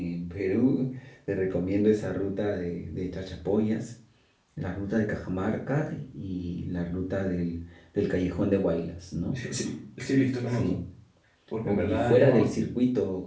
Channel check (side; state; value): both; identical; correlation 1.00